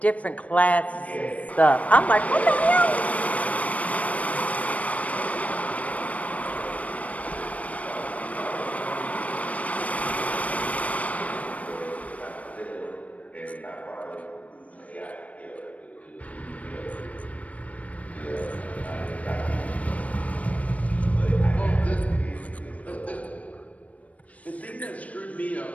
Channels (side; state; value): right; late; 0.067 ms